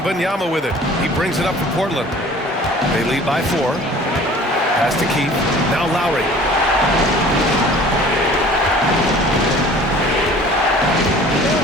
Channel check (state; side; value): normal; both; correlation 0.48